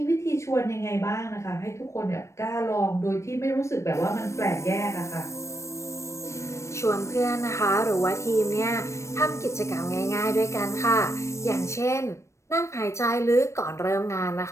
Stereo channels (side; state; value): right; late; 0.14 ms